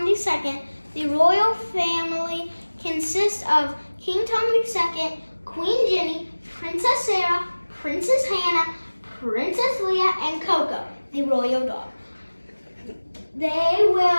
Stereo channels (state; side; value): inverted; both; correlation -1.00